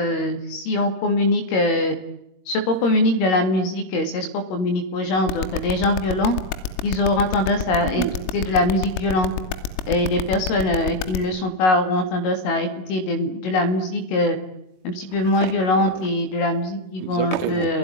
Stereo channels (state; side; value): late; right; 22 ms